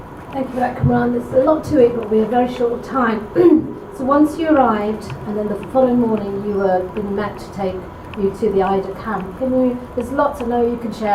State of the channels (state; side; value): identical; both; correlation 1.00